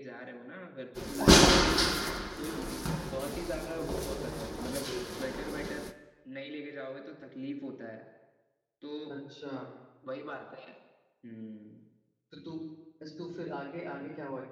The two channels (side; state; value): both; identical; correlation 1.00